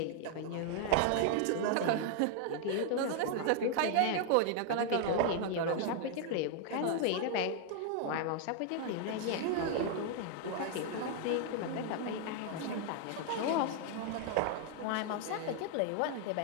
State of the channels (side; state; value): both; different; correlation 0.00